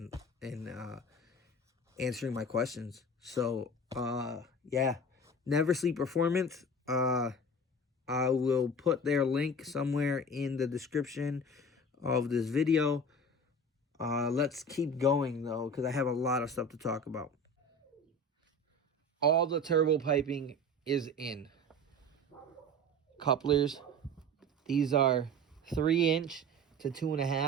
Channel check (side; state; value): both; normal; correlation 0.35